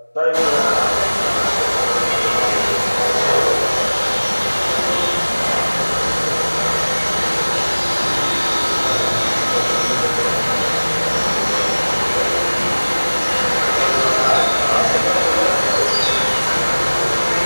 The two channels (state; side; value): inverted; both; correlation -1.00